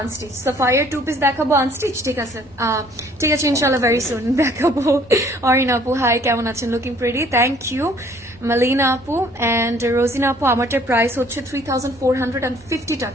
আনস্টিচ। সাফায়ার 2 piece দেখাবো আনস্টিচ, ঠিক আছে, ঠিক আছে, ইনশাল্লাহ ভেরি সুন দেখাবো। অরিন আপু হাই, কেমন আছেন? Looking pretty, thank you. Malina আপু অ্যান্ড রোজিনা আপু, আমারটার প্রাইস হচ্ছে 3,450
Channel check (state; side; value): normal; both; correlation 0.58